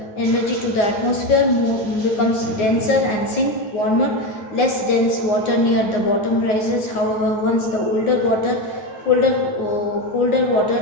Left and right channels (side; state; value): right; late; 9.6 ms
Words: the atmosphere, becomes denser and sink warmer. Less dense water near the bottom rises. However, once the colder water